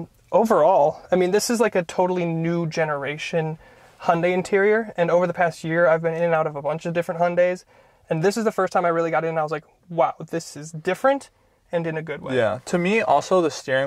Overall, I mean, this is like a totally new generation Hyundai interior, and over the past year, I've been in and out of a bunch of different Hyundais, and this is the first time I really got in and I was like, wow, this is different and in a good way. Yeah, to me, also, the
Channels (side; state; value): both; identical; correlation 1.00